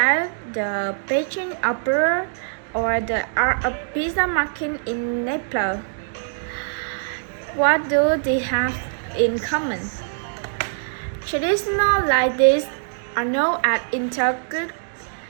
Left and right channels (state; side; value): silent; left; digital silence